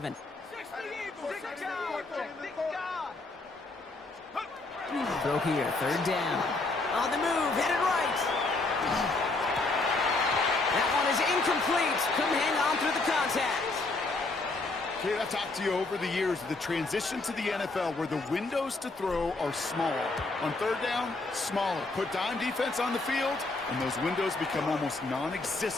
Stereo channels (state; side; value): quieter; right; 3.3 dB